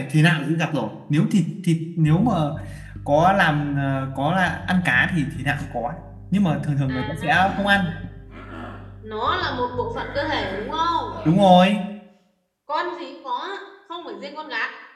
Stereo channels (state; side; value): identical; both; correlation 1.00